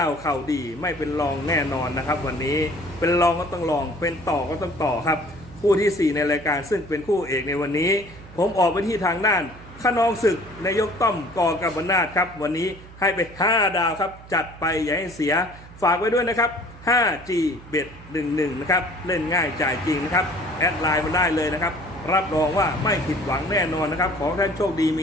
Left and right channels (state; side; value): noise; right; hum, 19 dB below the sound